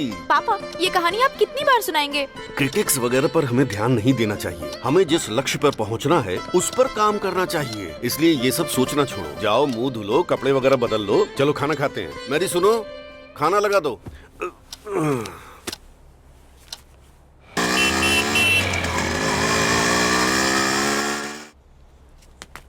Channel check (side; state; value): both; identical; correlation 1.00